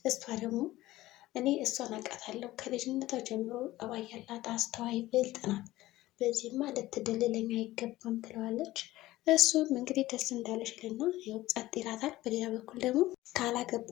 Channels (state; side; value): quieter; right; 16.7 dB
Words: እሷ ደግሞ እኔ እሷን አውቃታለሁ፣ ከልጅነቷ ጀምሮ ጠባይ ያላት አስተዋይ ብልጥ ናት፣ በዚህማ ልትደልለኝ አይገባም ትለዋለች። እሱም እንግዲህ ደስ እንዳለሽ ይልና ያው ጸጥ ይላታል። በሌላ በኩል ደግሞ